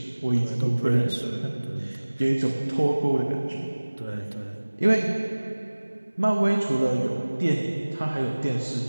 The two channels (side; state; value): both; inverted; correlation -1.00